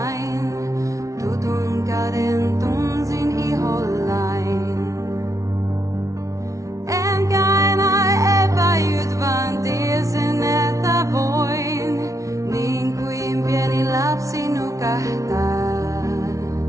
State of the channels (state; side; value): late; left; 0.16 ms